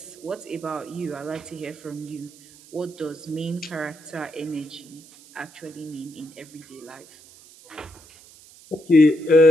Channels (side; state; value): right; noise; hiss, 23 dB below the sound